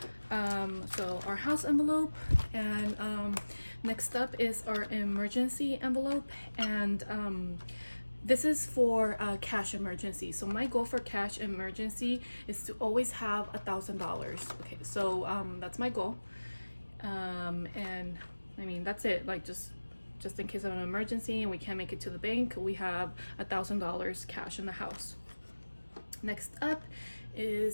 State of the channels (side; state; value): both; inverted; correlation -1.00